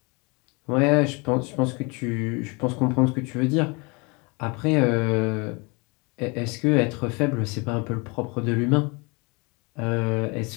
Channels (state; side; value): quieter; right; 29.3 dB